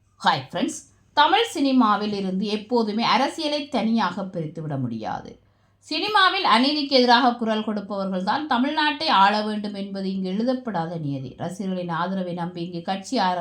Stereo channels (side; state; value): both; identical; correlation 1.00